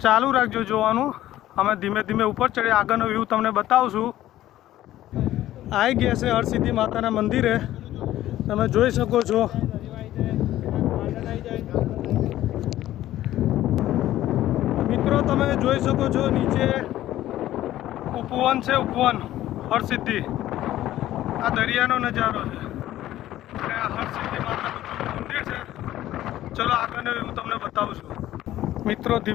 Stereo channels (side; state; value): right; quieter; 13.9 dB